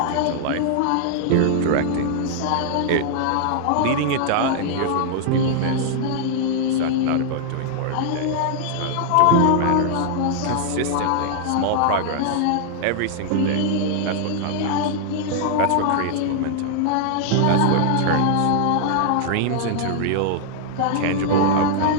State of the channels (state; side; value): different; both; correlation -0.01